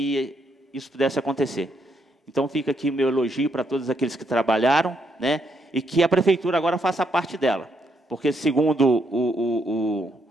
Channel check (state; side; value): normal; both; correlation 0.76